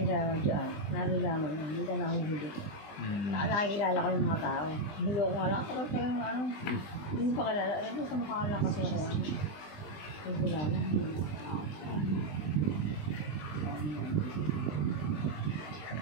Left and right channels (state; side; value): late; right; 20 ms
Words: sa dyan, nalalaman yun, hindi ka nahuhuli. Nakakilala ko yung mga tao. Hulo ko nga lang, tapos parang ano, hindi pa kalala. Alam mo sa mukha lang kasi ako, ano, hindi kilala.